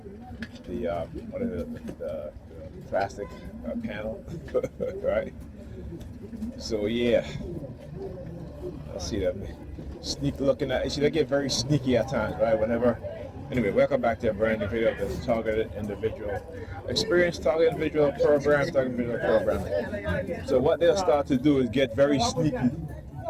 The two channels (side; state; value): both; identical; correlation 1.00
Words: what is it, the plastic panel, right? So yeah, I see them sneak looking at. See, they get very sneaky at times, right? Whenever. Anyway, welcome back to a brand new video of this targeted individual experience, targeted individual program, targeted individual programming. So what they'll start to do is get very sneaky,